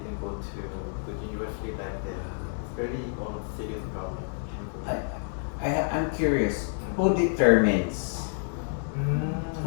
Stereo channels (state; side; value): silent; right; digital silence